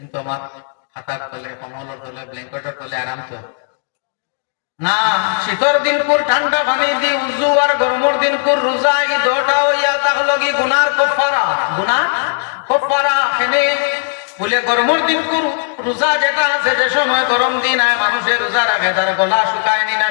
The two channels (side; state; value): right; silent; digital silence